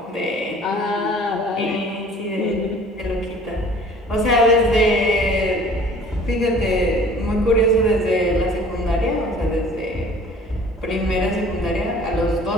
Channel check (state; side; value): normal; both; correlation 0.50